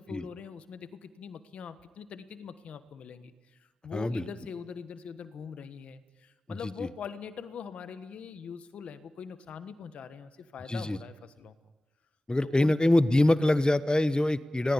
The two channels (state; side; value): normal; both; correlation 0.97